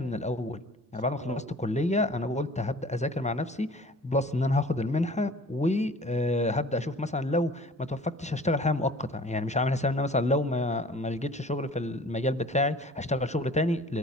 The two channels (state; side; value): normal; both; correlation 0.48